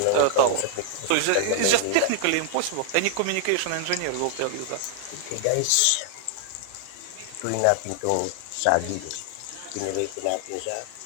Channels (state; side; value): different; both; correlation 0.00